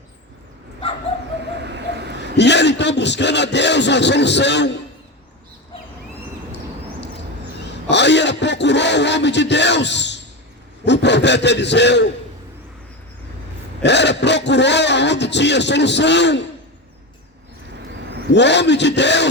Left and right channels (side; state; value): both; normal; correlation 0.20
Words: E ele então buscando a Deus uma solução. Aí ela procurou o homem de Deus, o profeta Eliseu. Ela procurou aonde tinha solução. O homem de